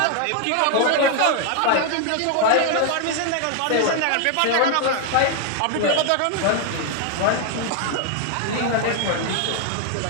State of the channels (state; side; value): different; both; correlation 0.00